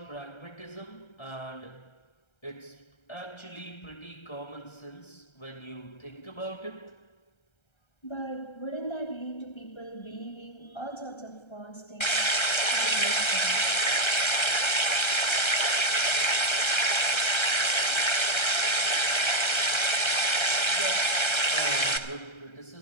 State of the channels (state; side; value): late; right; 1.3 ms